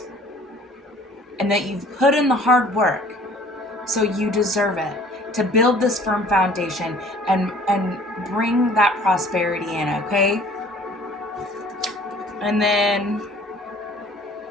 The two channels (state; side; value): normal; both; correlation 0.52